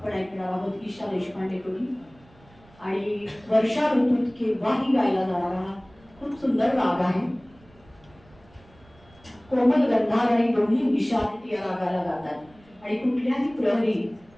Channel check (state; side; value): noise; right; rumble, 27 dB below the sound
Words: ऐकणार आहोत ईशा देशपांडेकडून, आणि वर्षा ऋतूत केव्हाही गायला जाणारा हा खूप सुंदर राग आहे. कोमल गंधार आणि दोन्ही निषाद या रागाला गातात आणि कुठल्याही प्रहरी